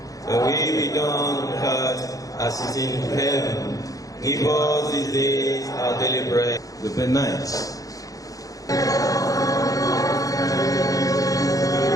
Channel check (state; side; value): late; right; 0.17 ms